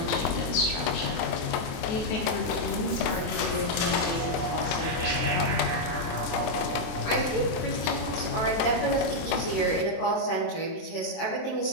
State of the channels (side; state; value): right; late; 24 ms